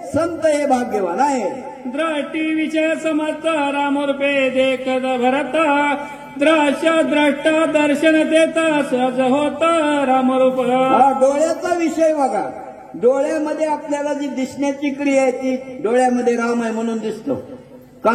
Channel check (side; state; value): both; identical; correlation 1.00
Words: संत हे भाग्यवान आहे. द्रष्टी विषय समर्थ रामरूपे देखत भरत, द्रश्य द्रष्टा दर्शन देता सहज होत रामरूप. डोळ्याचा विषय बघा. डोळ्यामध्ये आपल्याला जी दिसण्याची क्रिया आहे ती डोळ्यामध्ये राम आहे म्हणून दिसतो,